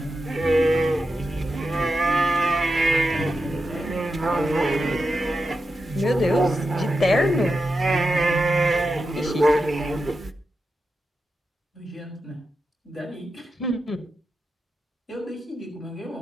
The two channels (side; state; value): both; normal; correlation 0.89